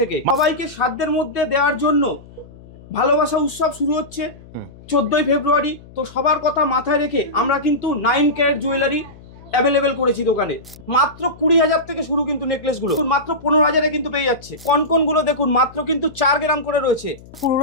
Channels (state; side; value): noise; left; hum, 21 dB below the sound